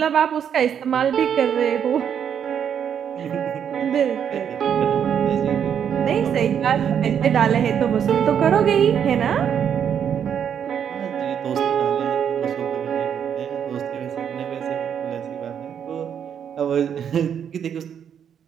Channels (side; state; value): left; quieter; 8.4 dB